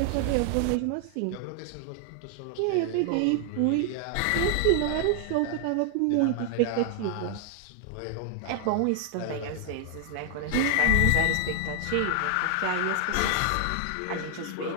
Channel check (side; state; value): both; different; correlation 0.00